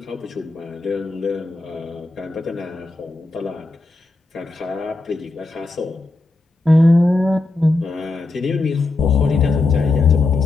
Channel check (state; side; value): quieter; right; 3.2 dB